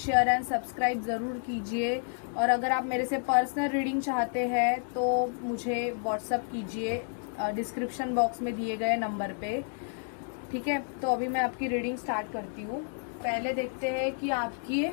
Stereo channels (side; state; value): right; silent; 58 dB below the other